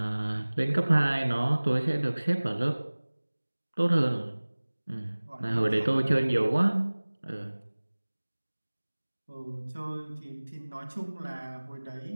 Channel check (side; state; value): both; inverted; correlation -1.00